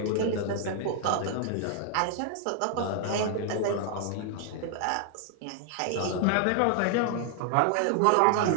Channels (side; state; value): both; different; correlation 0.00